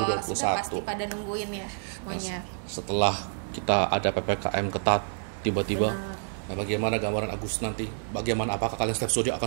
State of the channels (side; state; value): left; silent; digital silence